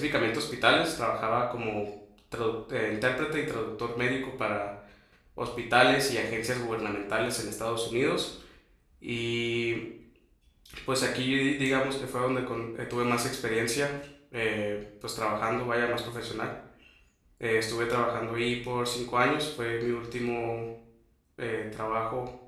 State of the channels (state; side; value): identical; both; correlation 1.00